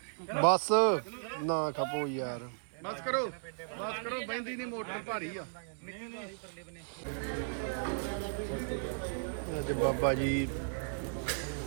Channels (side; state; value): left; silent; digital silence